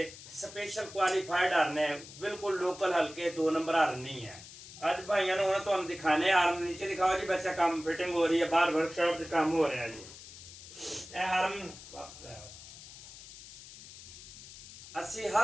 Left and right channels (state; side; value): noise; left; hiss, 16 dB below the sound